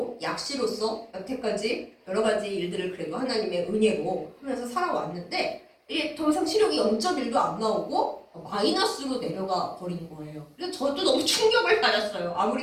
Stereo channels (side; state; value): both; identical; correlation 1.00